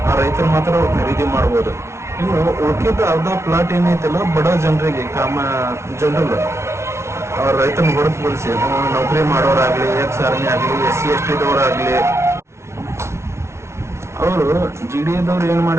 ಆ ರೈತರು ಮಾತ್ರ ಅವ್ರು ಖರೀದಿ ಮಾಡ್ಬೋದು. ಇನ್ನು ಉಳ್ಕಿದ ಅರ್ಧ ಪ್ಲಾಟ್ ಏನೈತಲ್ಲ ಬಡ ಜನರಿಗೆ, ಜನರಲ್ ಅವ್ರ ರೈತನ ಹೊರತುಪಡಿಸಿ ನೌಕರಿ ಮಾಡೋರಾಗ್ಲಿ, ಎಕ್ಸ್-ಆರ್ಮಿ ಆಗ್ಲಿ, SC-ST-ದವರಾಗ್ಲಿ, ಅವರು GDAದವ್ರು ಏನ್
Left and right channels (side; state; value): left; late; 0.13 ms